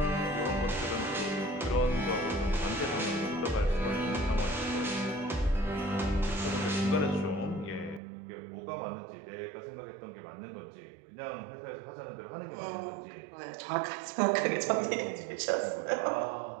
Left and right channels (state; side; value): drops out; left; at 8.0 s